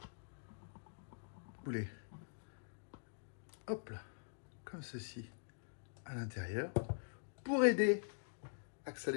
Boulet. Hop là. Comme ceci. À l'intérieur. Pour aider à que ça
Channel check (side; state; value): right; silent; digital silence